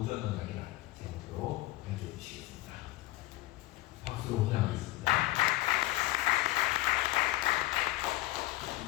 언약이라는 제목으로 연주해 주시겠습니다. 박수로 환영하겠습니다.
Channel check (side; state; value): right; quieter; 18.0 dB